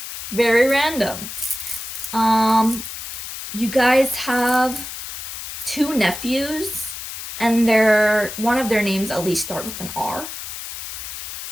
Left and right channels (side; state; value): left; noise; hiss, 9 dB below the sound